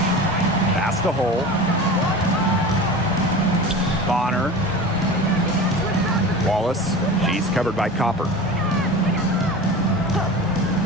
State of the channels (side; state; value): both; normal; correlation 0.33